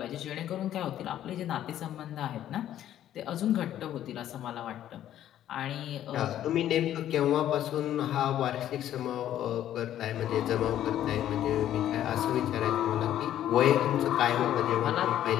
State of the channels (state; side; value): quieter; right; 11.7 dB